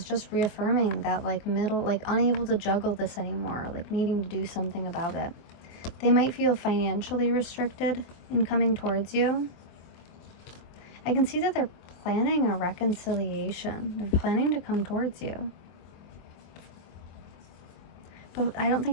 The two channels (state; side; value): late; right; 24 ms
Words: just reaffirming that like unable to juggle this anymore, like needing to do something about it. They might feel financially restricted in coming towards you. I can see that they're planning a reconciliation. They're planning to come towards you. But I don't